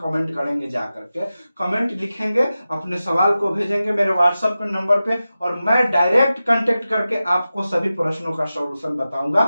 करेंगे, जाकर के कमेंट लिखेंगे, अपने सवाल को भेजेंगे मेरे व्हाट्सएप के नंबर पे, और मैं डायरेक्ट कांटेक्ट करके आपको सभी प्रश्नों का सॉल्यूशन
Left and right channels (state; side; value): inverted; both; correlation -0.94